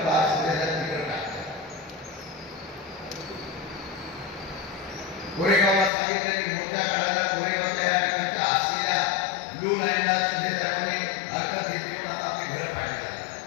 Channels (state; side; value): drops out; right; at 5.9 s